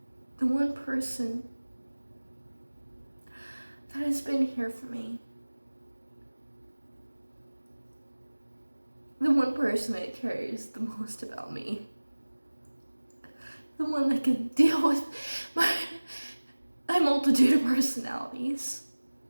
The one person that has been here for me. The one person that cares the most about me. The one that can deal with my multitude of personalities.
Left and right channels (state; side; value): inverted; both; correlation -1.00